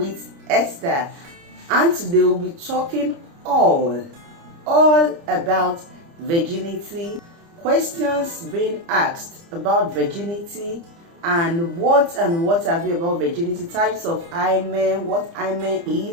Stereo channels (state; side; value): late; left; 30 ms